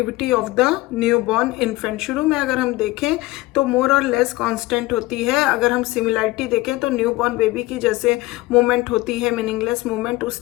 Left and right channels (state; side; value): quieter; right; 19.7 dB